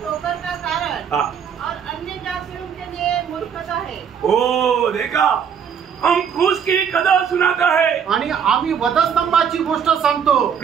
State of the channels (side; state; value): left; quieter; 7.6 dB